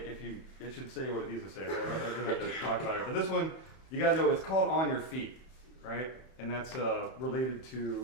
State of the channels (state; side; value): late; right; 31 ms